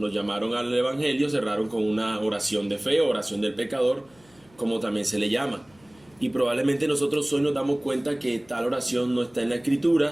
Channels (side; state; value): left; noise; hum, 30 dB below the sound